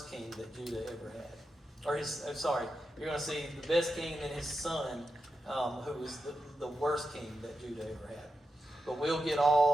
king that Judah ever had. You're going to see the best king and then his son, who was the worst king that Judah ever had. But we'll get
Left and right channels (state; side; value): normal; both; correlation 0.88